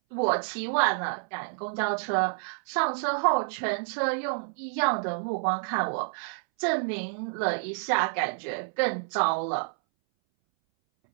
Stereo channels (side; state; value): left; silent; 59 dB below the other